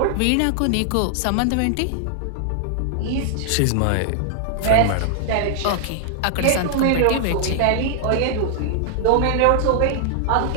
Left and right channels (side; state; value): both; different; correlation 0.00